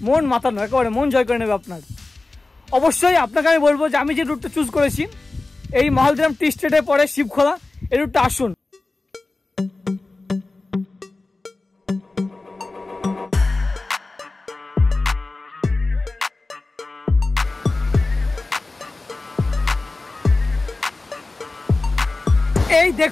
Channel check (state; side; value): quieter; right; 3.3 dB